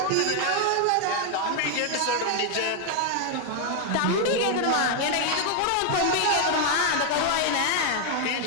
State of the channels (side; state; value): both; different; correlation 0.00